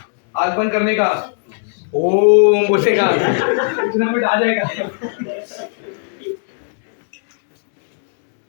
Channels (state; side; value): silent; right; digital silence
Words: आग बंद करने का ओम बोलेगा इतना मिनट आ जाएगा।